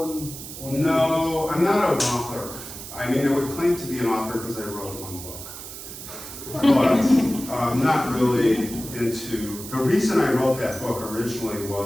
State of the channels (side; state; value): right; noise; hiss, 11 dB below the sound